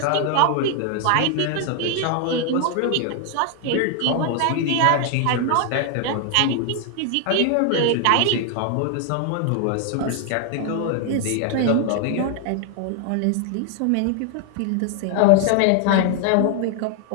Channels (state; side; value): different; both; correlation 0.00